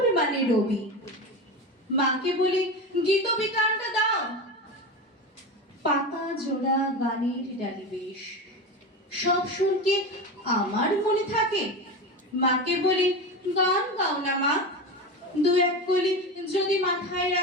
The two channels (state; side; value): normal; both; correlation 0.23